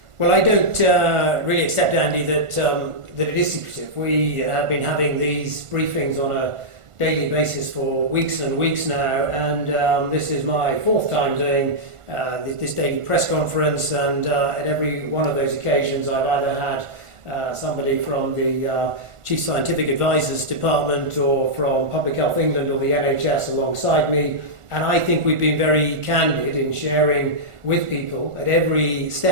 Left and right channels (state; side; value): late; left; 1.5 ms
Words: Well, I don't really accept, Andy, that it is secretive. We have been having these briefings on a daily basis for weeks and weeks now, and this is my fourth time doing this daily press conference, and at every one of those occasions I've either had somebody from the Chief Scientific Advisors Department or from Public Health England or the NHS alongside me, and I think we've been very candid in sharing with people at every